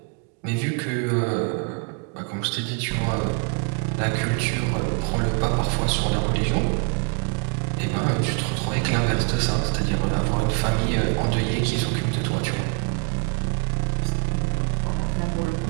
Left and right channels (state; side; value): quieter; left; 33.7 dB